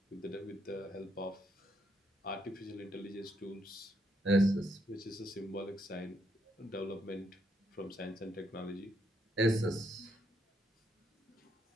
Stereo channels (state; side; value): normal; both; correlation 0.76